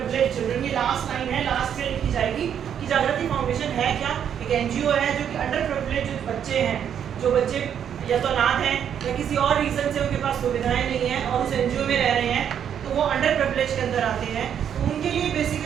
children, ये लास्ट लाइन है, लास्ट में लिखी जाएगी कि जागृति फाउंडेशन है क्या, एक एनजीओ है जो कि अंडर प्रिविलेज बच्चे हैं, जो बच्चे या तो अनाथ हैं या किसी और रीजन से उनके पास सुविधाएं नहीं है और उस एनजीओ में रह रहे हैं, तो वो अंडर प्रिविलेज के अंदर आते हैं, तो उनके लिए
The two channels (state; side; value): quieter; left; 8.8 dB